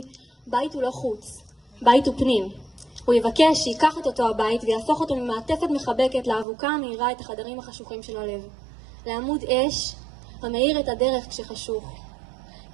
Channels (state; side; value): drops out; left; at 6.5 s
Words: בית הוא לא חוץ, בית הוא פנים. הוא יבקש שיקח את אותו הבית ויהפוך אותו ממעטפת מחבקת לאבוקה המאירה את החדרים החשוכים של הלב. לעמוד אש המאיר את הדרך כשחשוך.